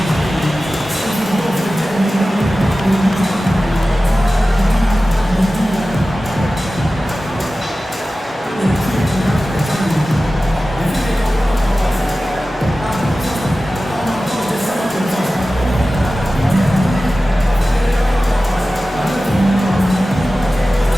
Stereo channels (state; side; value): normal; both; correlation 0.95